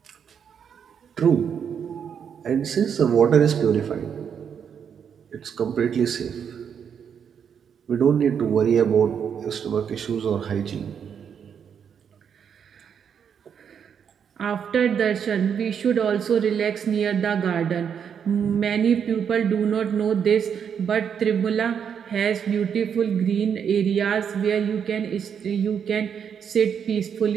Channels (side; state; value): left; quieter; 7.6 dB